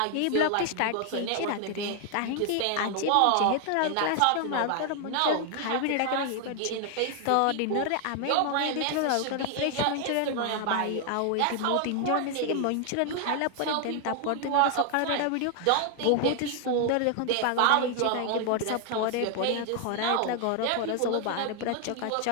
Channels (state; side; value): different; both; correlation 0.00